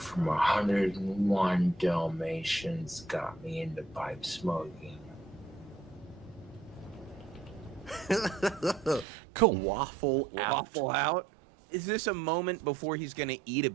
101 Dalmatians got me into pipe smoking. Cool. Waffle Out. Is this a moment before he's going to eat a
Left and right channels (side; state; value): left; drops out; at 9.1 s